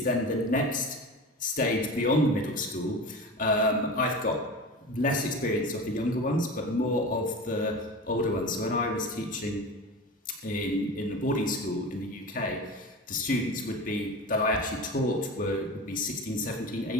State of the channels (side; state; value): both; normal; correlation 0.31